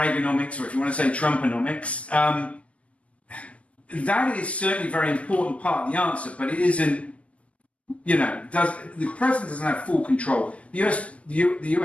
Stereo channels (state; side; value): late; right; 0.063 ms